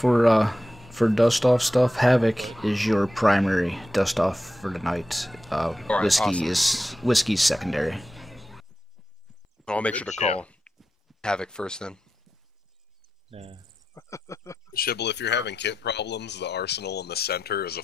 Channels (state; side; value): normal; both; correlation 0.89